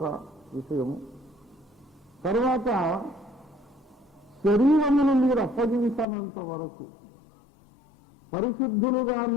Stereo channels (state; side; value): drops out; right; at 6.1 s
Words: విషయము. తర్వాత శరీరమును మీరు అప్పగించనంత వరకు